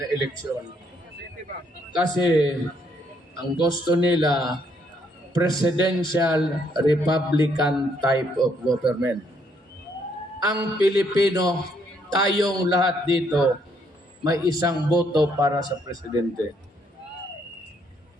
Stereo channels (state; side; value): normal; both; correlation 0.71